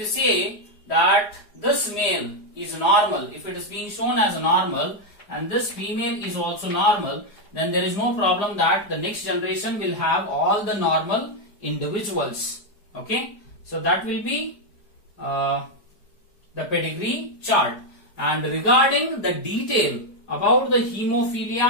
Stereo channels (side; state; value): right; late; 4.8 ms